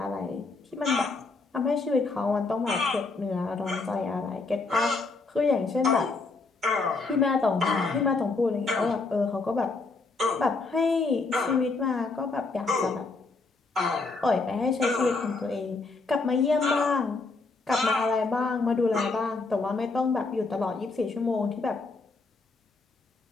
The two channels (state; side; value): quieter; right; 3.8 dB